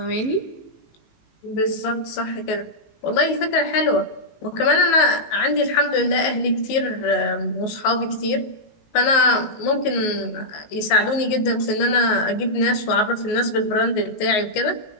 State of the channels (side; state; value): right; late; 18 ms